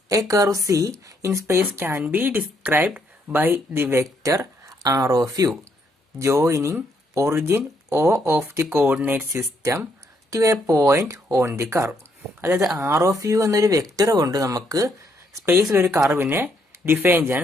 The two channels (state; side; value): normal; both; correlation 0.73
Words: A curve C in space can be described by the vector R of U joining origin O of the coordinate system to a point on the curve. അതായത് ആർ ഓഫ് യു എന്നൊരു വെക്ടർ കൊണ്ട് നമുക്ക് സ്പേസിൽ ഒരു കർവിനെ ഡിഫൈൻ